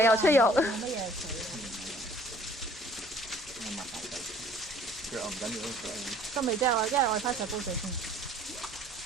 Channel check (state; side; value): normal; both; correlation 0.55